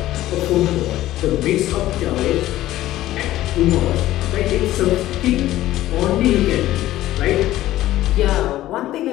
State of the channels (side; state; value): right; quieter; 14.8 dB